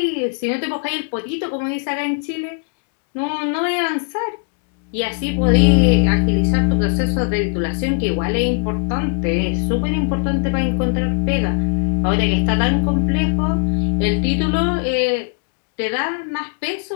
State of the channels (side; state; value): right; silent; digital silence